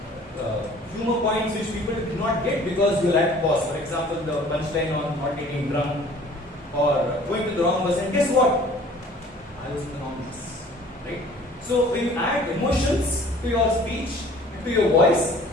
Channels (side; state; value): both; normal; correlation 0.51